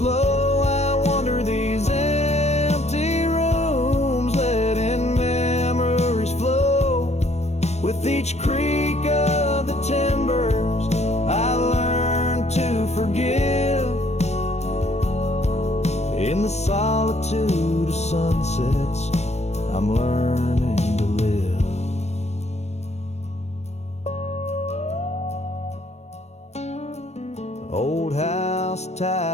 low, I wander these empty rooms, letting memories flow. With each creak of the timbers I learn to forgive. In the solitude of sunsets I'm learning to live. Old house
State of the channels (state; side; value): late; right; 0.31 ms